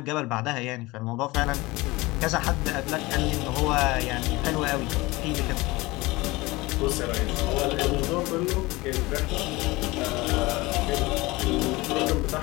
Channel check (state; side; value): quieter; right; 21.7 dB